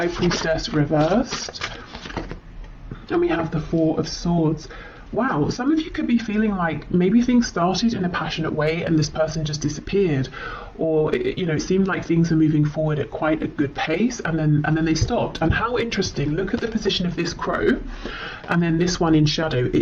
Priestess reversed. And we have the Four of Swords. Wow, some of you could be feeling like maybe things started in a passionate way and this person just disappeared, or it seemed like things were moving forward at quite a good pace and then they stopped. And how interesting, look at the position of this crow and then this one in shadow.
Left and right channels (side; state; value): both; identical; correlation 1.00